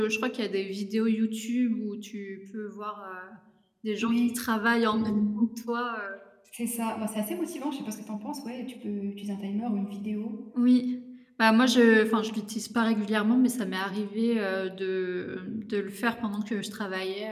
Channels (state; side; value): identical; both; correlation 1.00